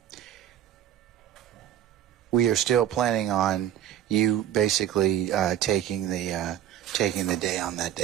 we are still planning on you basically taking the day on that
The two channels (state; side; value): quieter; left; 11.2 dB